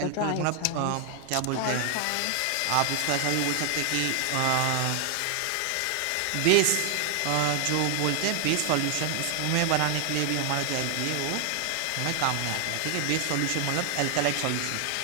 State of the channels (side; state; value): both; different; correlation 0.00